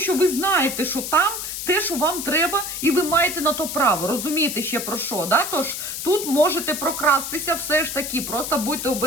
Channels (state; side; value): noise; left; hiss, 5 dB below the sound